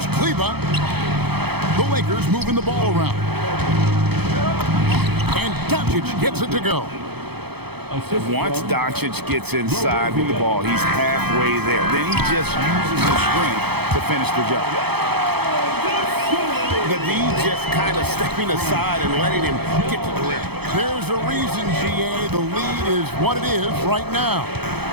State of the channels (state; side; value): late; left; 0.97 ms